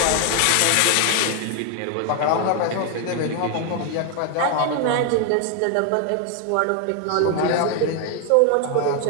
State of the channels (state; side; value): different; both; correlation 0.00